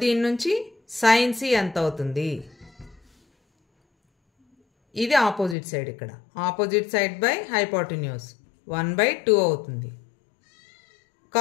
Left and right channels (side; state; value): right; drops out; at 5.6 s